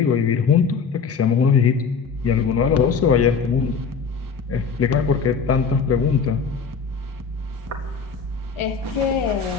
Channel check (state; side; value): quieter; right; 5.8 dB